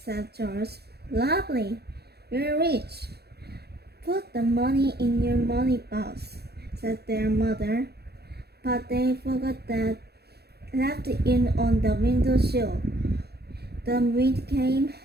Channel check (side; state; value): left; late; 0.47 ms